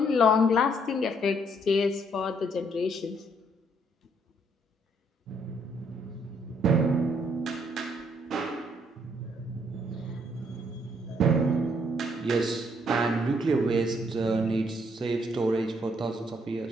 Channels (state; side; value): normal; both; correlation 0.69